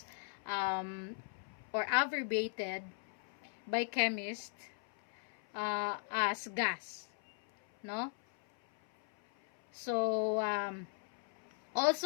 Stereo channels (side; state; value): right; silent; 52 dB below the other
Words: or abbreviated by chemists as gas, no? So